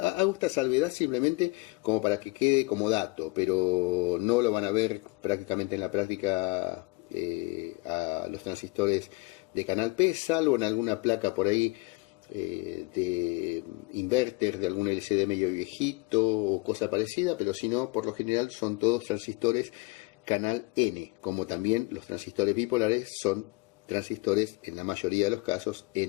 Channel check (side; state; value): right; quieter; 25.4 dB